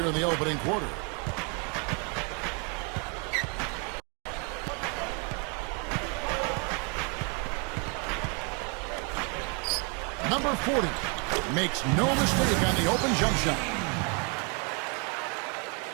in the opening quarter. Number 40 makes no mistake on the open jump shot.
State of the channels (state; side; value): quieter; left; 35.1 dB